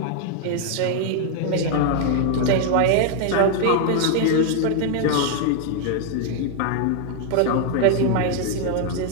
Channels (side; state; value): both; different; correlation 0.00